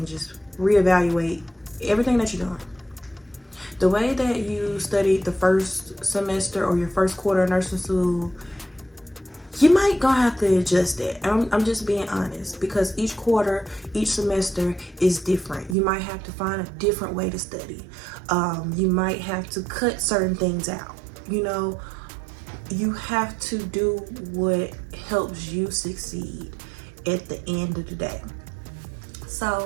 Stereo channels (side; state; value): left; drops out; at 15.8 s